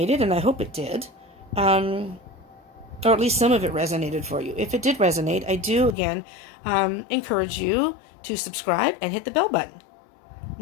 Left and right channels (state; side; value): drops out; right; at 6.0 s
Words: and I hope it did, or at least some of it resonated for you. If it did resonate, I do, again, encourage you to subscribe and hit the bell button.